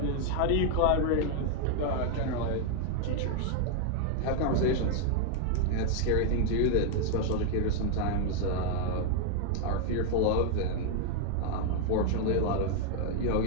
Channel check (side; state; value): both; different; correlation 0.00